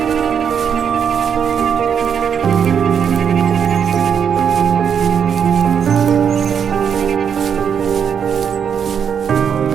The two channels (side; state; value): left; quieter; 7.6 dB